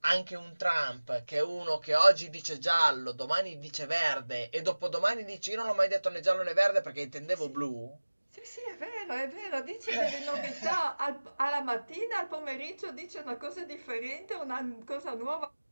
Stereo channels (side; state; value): both; inverted; correlation -1.00